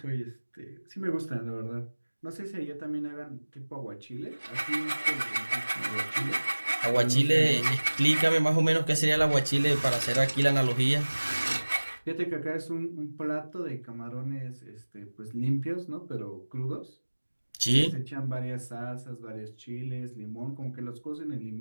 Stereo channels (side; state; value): both; inverted; correlation -1.00